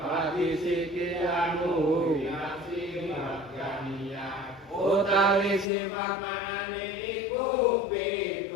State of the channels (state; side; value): drops out; right; at 5.7 s